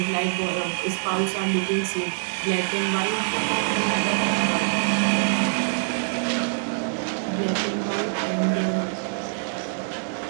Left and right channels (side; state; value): left; silent; digital silence